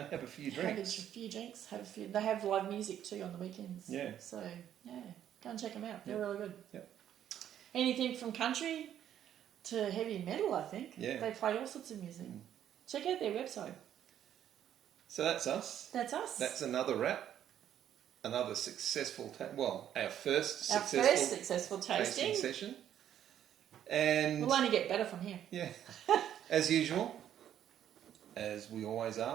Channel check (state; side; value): quieter; left; 10.5 dB